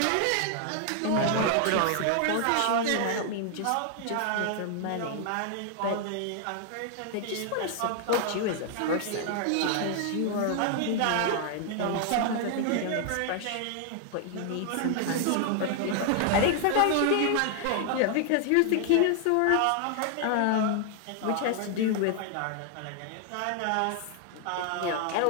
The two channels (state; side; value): different; both; correlation 0.00